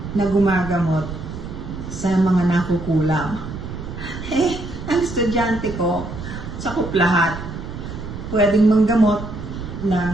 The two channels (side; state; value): right; noise; rumble, 9 dB below the sound